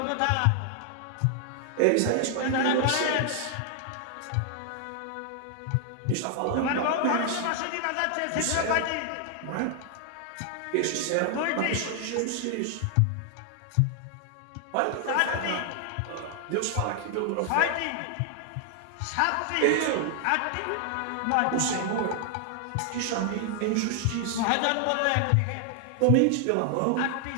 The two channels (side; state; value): both; different; correlation 0.00